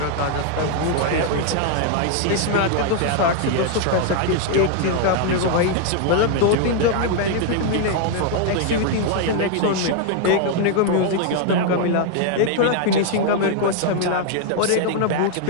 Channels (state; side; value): different; both; correlation 0.00